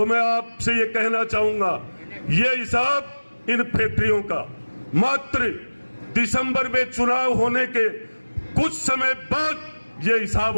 मैं आपसे ये कहना चाहूंगा, ये हिसाब इन फैक्ट्रियों का मात्र दिसंबर में चुनाव होने के कुछ समय बाद ये हिसाब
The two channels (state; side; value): inverted; both; correlation -1.00